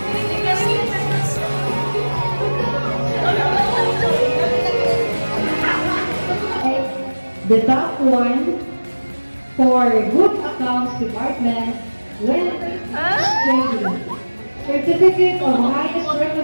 The top one for Good Accounts Department went trading. Certificate of highest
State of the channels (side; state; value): both; inverted; correlation -1.00